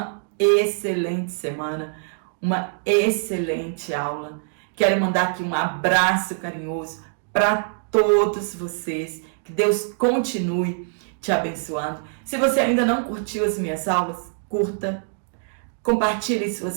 excelente semana, uma excelente aula. Quero mandar aqui um abraço carinhoso para todos vocês. Que Deus continue te abençoando. Se você ainda não curtiu as minhas aulas, curta, compartilhe em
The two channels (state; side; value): silent; left; digital silence